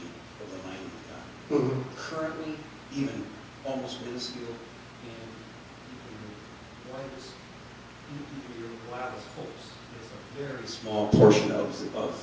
of the mining economy. Currently, even almost minuscule, and even your wildest hopes is a very small portion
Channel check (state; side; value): identical; both; correlation 1.00